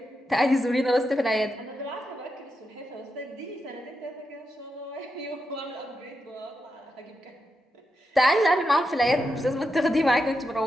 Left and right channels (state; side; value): normal; both; correlation 0.86